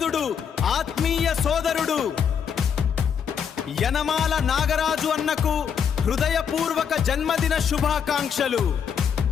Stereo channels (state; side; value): quieter; right; 7.5 dB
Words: ఆత్మీయ సోదరుడు. యనమాల నాగరాజు అన్నకు హృదయపూర్వక జన్మదిన శుభాకాంక్షలు.